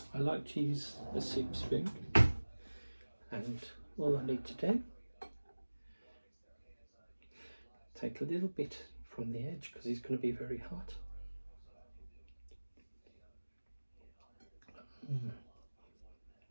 like to use a soup spoon, and all I need to do, take a little bit from the edge because it's going to be very hot.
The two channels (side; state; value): both; inverted; correlation -1.00